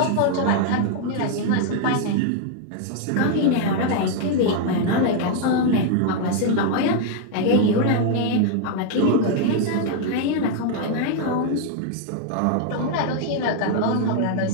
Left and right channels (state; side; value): different; both; correlation 0.00